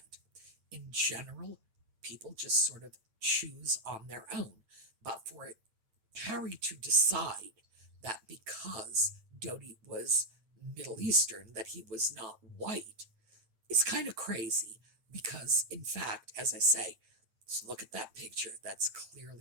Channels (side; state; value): left; late; 9.2 ms